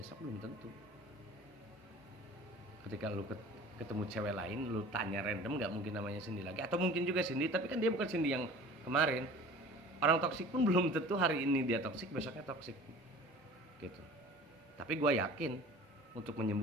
belum tentu. Ketika lu ketemu cewek lain, lu tanya random, gak mungkin namanya Cindy lagi, atau mungkin juga Cindy tapi kan dia bukan Cindy yang kemarin. Orang toksik pun belum tentu hari ini dia toksik, besoknya toksik gitu. Tapi gue yakin untuk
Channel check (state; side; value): normal; both; correlation 0.43